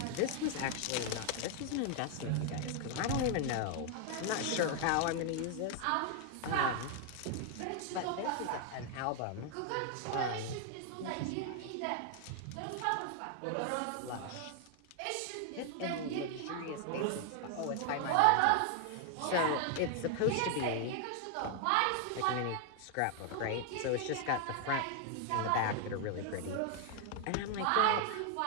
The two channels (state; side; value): different; both; correlation 0.00